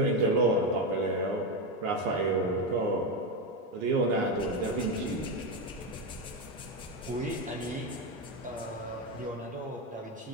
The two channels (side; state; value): both; normal; correlation 0.11